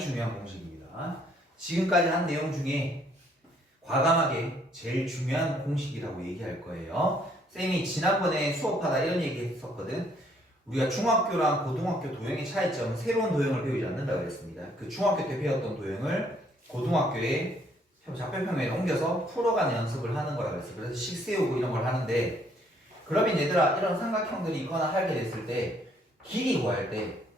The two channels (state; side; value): normal; both; correlation 0.66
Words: 공식입니다. 지금까지 한 내용 중에 과감하게 제일 중요한 공식이라고 얘기할 거예요. 쌤이 지난번에 수업하다 이런 얘기 했었거든. 우리가 중학교랑 고등학교 도형의 차이점은 새로운 도형을 배우지 않는다고 그랬습니다. 그 중학교 때 배웠던 도형을 고등학교에 좌표평면에 옮겨서 풀어가는 연습을 하는 거라고 그랬어요. 그래서 식 세우고 이런 걸 하는데, 그러면 얘들아 이런 삼각형들이 있거나 하게 됐을 때 길이 구할 때